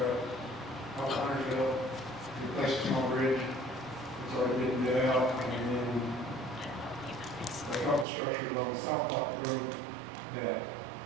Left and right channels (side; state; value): left; drops out; at 8.1 s